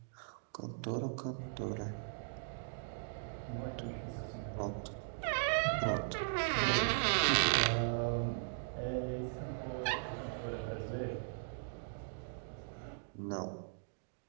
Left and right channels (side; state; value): left; silent; digital silence